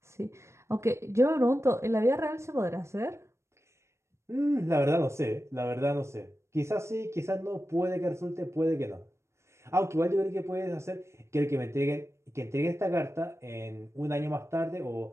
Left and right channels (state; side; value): late; left; 0.13 ms